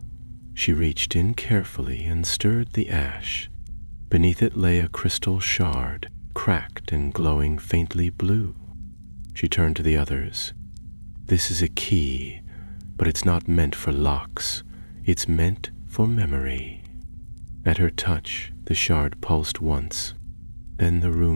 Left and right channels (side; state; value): both; inverted; correlation -1.00